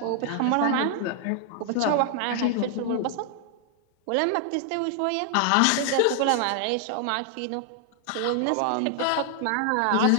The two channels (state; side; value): different; both; correlation 0.00